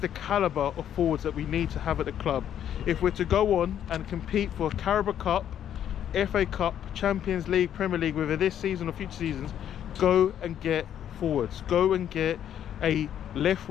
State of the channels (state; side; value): quieter; right; 10.1 dB